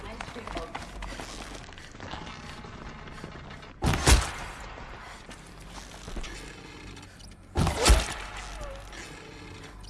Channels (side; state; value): both; identical; correlation 1.00